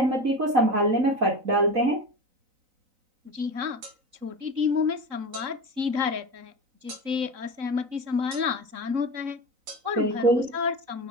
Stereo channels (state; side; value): late; left; 3.9 ms